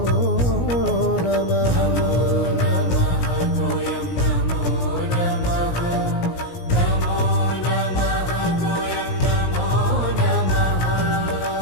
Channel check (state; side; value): late; right; 17 ms